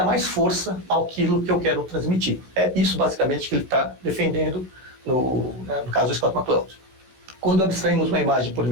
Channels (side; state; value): left; late; 16 ms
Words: mais força àquilo que eu quero transmitir. É isso basicamente que ele está defendendo no caso do Scott McCloud. Quando abstraímos uma imagem por